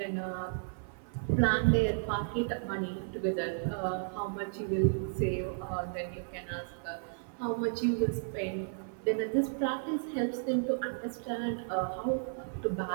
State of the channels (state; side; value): silent; left; 56 dB below the other